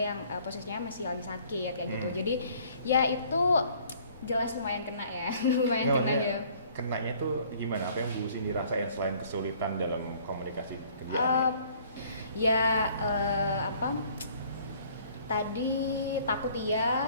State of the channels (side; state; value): both; inverted; correlation -0.57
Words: yang posisinya masih lagi sakit kayak gitu. Jadi ya itu jelas lumayan kena ya. Lumayan kena ya. Kenanya tuh gimana? Apa yang Bu Cindy rasain selain kesulitan dalam komunikasi kerja? Tadi takut